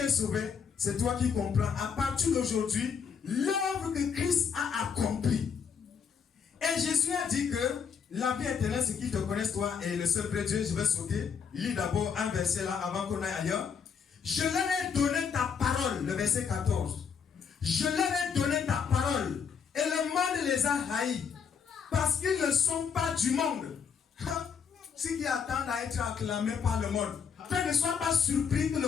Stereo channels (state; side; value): quieter; right; 6.7 dB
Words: est sauvé? C'est toi qui comprends. À partir d'aujourd'hui, l'œuvre que Christ a accomplie. Et Jésus a dit que la vie éternelle, c'est qu'ils te connaissent toi et le seul vrai Dieu. Je vais sauter. Il lit d'abord un verset là avant qu'on aille ailleurs. Je leur ai donné ta parole, le verset 14. Je leur ai donné ta parole et le monde les a haïs parce qu'ils ne sont pas du monde. Ce qui attendent à être acclamés par le monde. Frère, ne sois pas surpris que